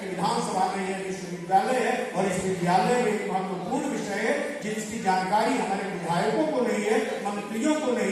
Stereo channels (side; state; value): both; identical; correlation 1.00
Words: विधानसभा में यह विश्वविद्यालय है और इस विद्यालय में एक महत्वपूर्ण विषय है जिसकी जानकारी हमारे विधायकों को नहीं है, मंत्रियों को